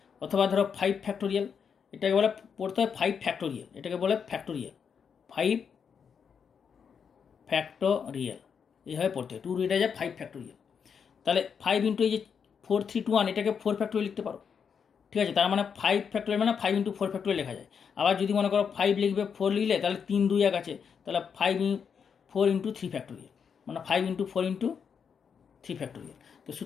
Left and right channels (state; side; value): quieter; right; 6.8 dB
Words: অথবা ধরো 5 ফ্যাক্টোরিয়াল, এটাকে বলে পড়তে হয় 5 ফ্যাক্টোরিয়াল, এটাকে বলে ফ্যাক্টোরিয়াল 5 ফ্যাক্টোরিয়াল এইভাবে পড়তে হয়, 2 রিডা যায় 5 ফ্যাক্টোরিয়াল। তাহলে 5 ইন্টু এই যে 4 3 2 1 এটাকে 4 ফ্যাক্টোরিয়াল লিখতে পারো, ঠিক আছে। তার মানে 5 ফ্যাক্টোরিয়াল মানে 5 ইন্টু 4 ফ্যাক্টোরিয়াল লেখা যায়। আবার যদি মনে করো 5 লিখবে 4 লিখলে তাহলে 3 2 1 আছে, তাহলে 4 ইন্টু 3 ফ্যাক্টোরিয়াল মানে 5 ইন্টু 4 ইন্টু 3 ফ্যাক্টোরিয়াল। তো